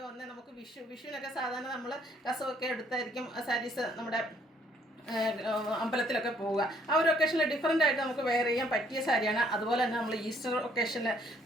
നമുക്ക് വിഷുവിനൊക്കെ സാധാരണ നമ്മൾ കസവൊക്കെ എടുത്തായിരിക്കും സാരീസ് നമ്മുടെ അമ്പലത്തിലൊക്കെ പോവുക. ആ ഒരു ഒക്കേഷനിൽ ഡിഫറൻ്റ് ആയിട്ട് നമുക്ക് വെയർ ചെയ്യാൻ പറ്റിയ സാരിയാണ്. അതുപോലെ തന്നെ നമ്മൾ ഈസ്റ്റർ ഒക്കേഷനിൽ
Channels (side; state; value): both; normal; correlation 0.65